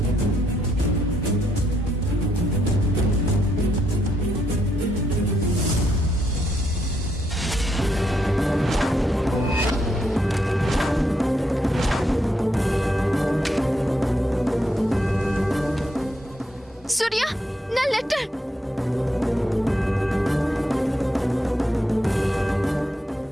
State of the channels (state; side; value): normal; both; correlation 0.77